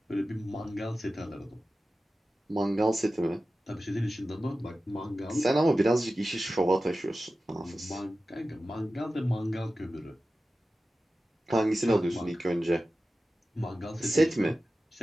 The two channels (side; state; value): both; normal; correlation 0.94